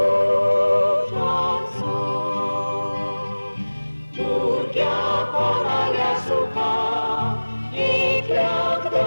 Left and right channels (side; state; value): both; inverted; correlation -1.00